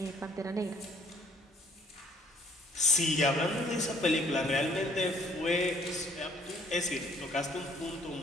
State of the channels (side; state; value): both; normal; correlation 0.61